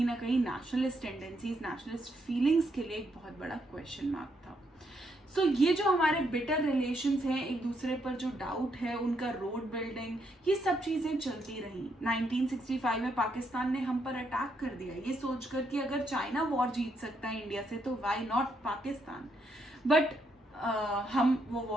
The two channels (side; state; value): both; normal; correlation 0.76